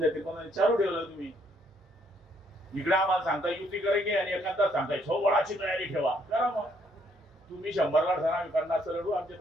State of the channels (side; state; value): both; normal; correlation 0.69